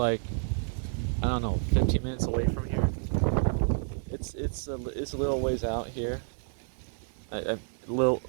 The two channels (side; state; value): left; silent; 58 dB below the other